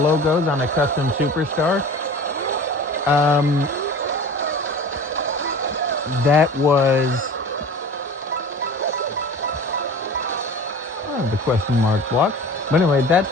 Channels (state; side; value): normal; both; correlation 0.39